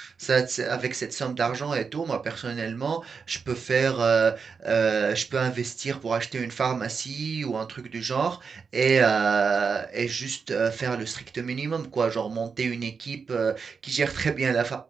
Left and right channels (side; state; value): left; quieter; 5.5 dB